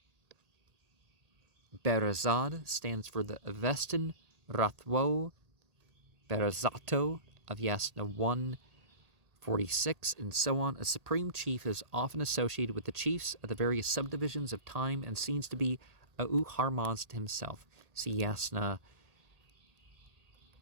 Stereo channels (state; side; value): late; left; 1.8 ms